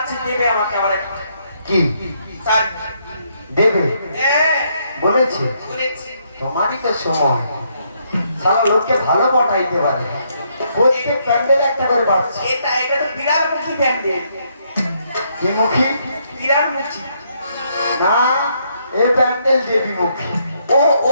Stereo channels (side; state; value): both; inverted; correlation -0.73